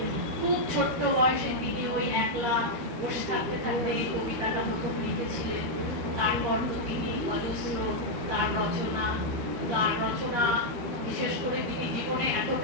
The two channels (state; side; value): late; left; 13 ms